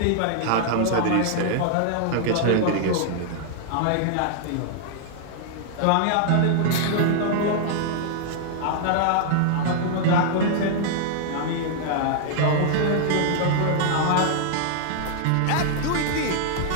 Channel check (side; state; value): both; different; correlation -0.01